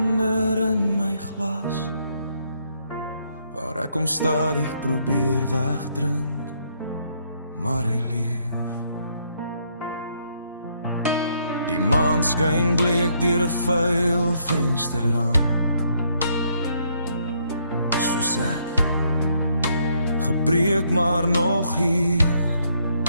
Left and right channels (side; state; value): both; inverted; correlation -0.72